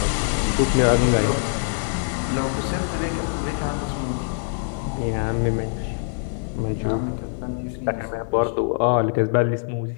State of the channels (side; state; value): right; silent; 63 dB below the other